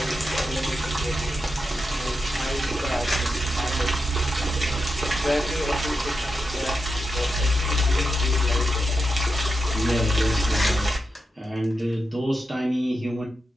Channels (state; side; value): normal; both; correlation 0.88